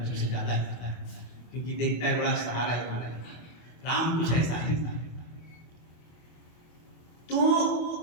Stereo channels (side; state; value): right; late; 24 ms